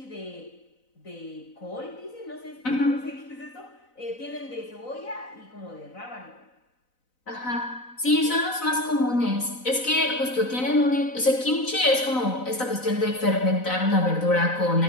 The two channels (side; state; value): right; late; 4.0 ms